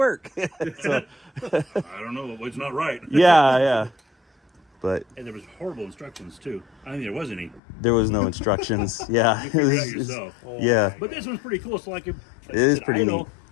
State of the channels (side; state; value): right; drops out; at 7.6 s